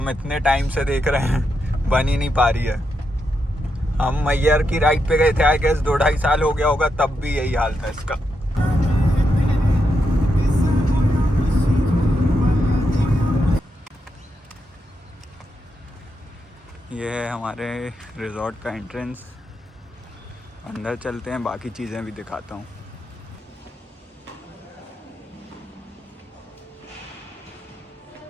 इतने टाइम से देख रहे हैं, बन ही नहीं पा रही है। हम मैयर की राइड पे गए थे, आई गेस 2-2.5 साल हो गया होगा, तब भी यही हाल था इसका। ये है हमारे रिजॉर्ट का एंट्रेंस। अंदर चलते हैं, बाकी चीज़ें भी दिखाता हूँ।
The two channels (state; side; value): normal; both; correlation 0.83